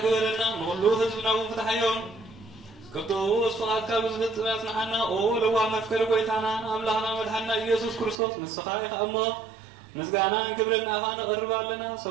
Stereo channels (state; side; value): drops out; left; at 8.2 s